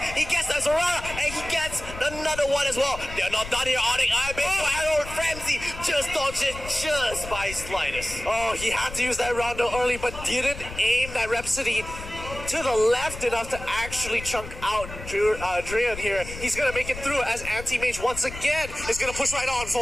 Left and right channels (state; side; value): noise; left; rumble, 12 dB below the sound